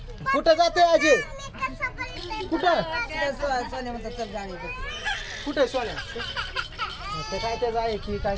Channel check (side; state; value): both; identical; correlation 1.00